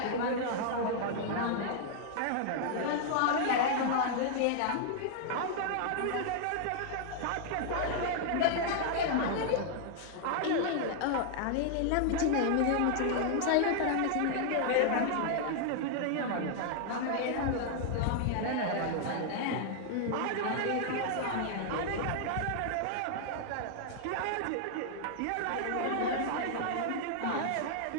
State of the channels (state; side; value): different; both; correlation -0.01